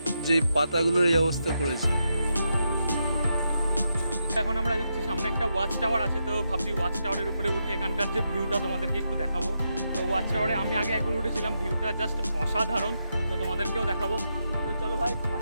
যে পাতাগুলোর এই অবস্থা করেছে। এখন আমরা যাচ্ছি, সামনে একটা ওয়াচ টাওয়ার আছে, তো ভাবছি ওয়াচ টাওয়ারের উপরে উঠে এখানকার যে ভিউটা তোমাদেরকে একটু দেখাবো। তো ওয়াচ টাওয়ারে আমি আগে একবার উঠেছিলাম, ভিউটা জাস্ট অসাধারণ, তো তোমাদেরকেও দেখাবো। তো চলো ভাই,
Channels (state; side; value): inverted; both; correlation -0.83